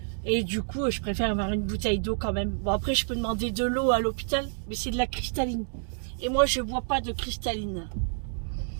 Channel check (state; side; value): silent; left; digital silence